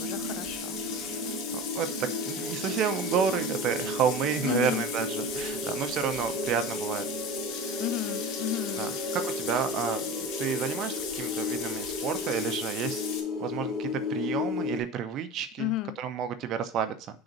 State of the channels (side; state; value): both; normal; correlation 0.32